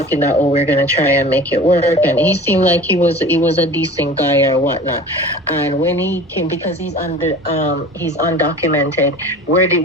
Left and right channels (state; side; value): normal; both; correlation 0.40